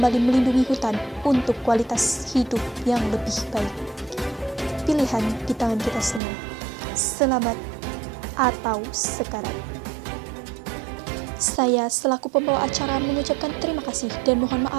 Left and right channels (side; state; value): left; drops out; at 6.2 s